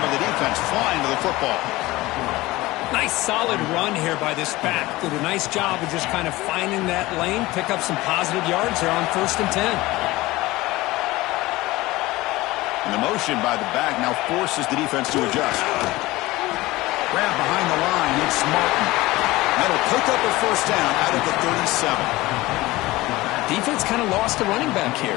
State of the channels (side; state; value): right; quieter; 19.4 dB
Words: of the defense flying to the football. Nice solid run here by this back. Did a nice job of just kind of finding that lane, pick up some positive yards there on 1st and 10. And the motion by the back now forces the defense to adjust. Grab behind the line, it's Martin. That'll pick up a first down out of the 37. Defense kind of lost the running back